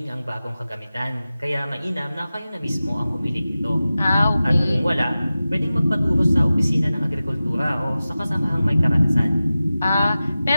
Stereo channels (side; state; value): both; inverted; correlation -0.95